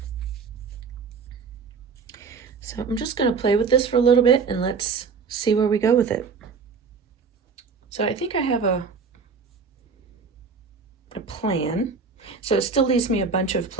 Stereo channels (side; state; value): left; quieter; 5.3 dB